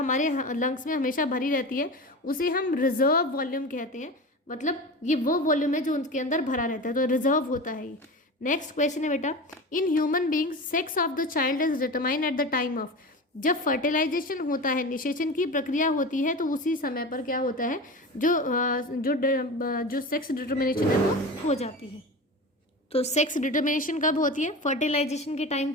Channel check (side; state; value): both; normal; correlation 0.29